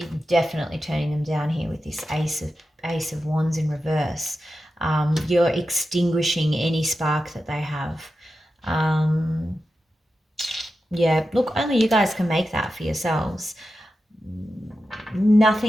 definitely turning them down here with this Ace of Wands in reverse. You're extinguishing any spark that they have. Yeah, look, only you guys can make that for yourselves.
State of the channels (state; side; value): normal; both; correlation 0.91